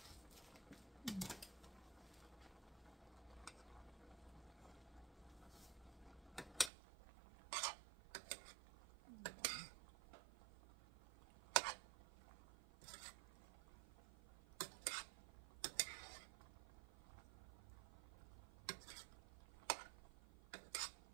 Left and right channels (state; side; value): drops out; left; at 6.7 s